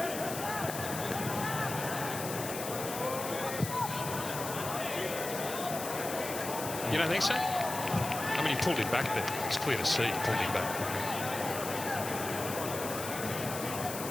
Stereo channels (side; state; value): left; noise; hiss, 7 dB below the sound